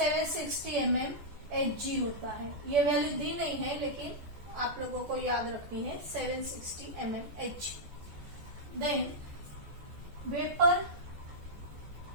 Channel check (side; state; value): left; late; 14 ms